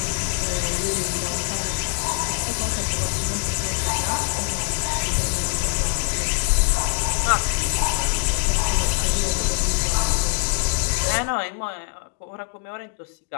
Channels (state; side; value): quieter; right; 39.2 dB